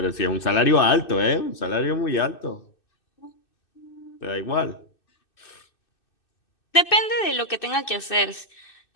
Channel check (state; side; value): late; right; 2.6 ms